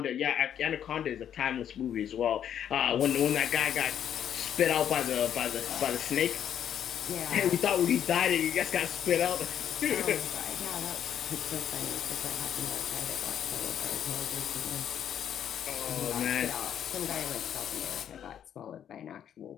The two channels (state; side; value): quieter; right; 9.5 dB